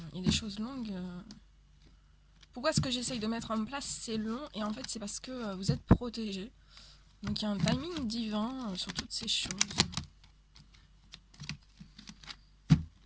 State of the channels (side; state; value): both; identical; correlation 1.00